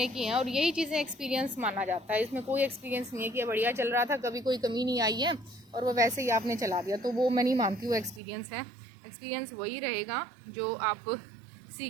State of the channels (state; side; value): drops out; left; at 8.2 s